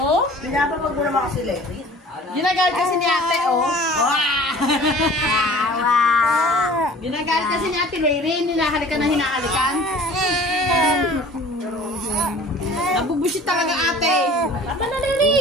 Pinapapag mo naman kasi Levi. Ginagal kasi ni ate, oh. Wawa! Ginagal kasi ni ate Lery. Hinahalikan na hinahalikan. Nabubusit talaga ate. Aba na Lery.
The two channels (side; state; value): both; normal; correlation 0.46